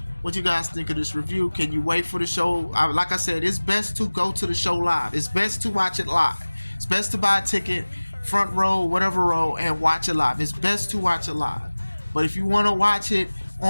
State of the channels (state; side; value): inverted; both; correlation -1.00